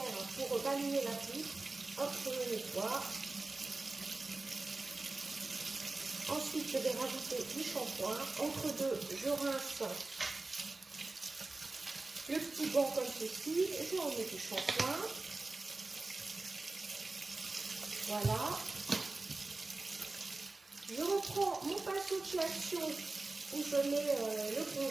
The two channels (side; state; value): left; quieter; 3.3 dB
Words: pour balayer la poutre. Hop, je le nettoie. Ensuite, je vais rajouter du shampoing. Entre deux, je rince le petit banc comme ceci. Je remets du shampoing. Voilà. Je reprends mon pinceau de chez Action où je mets le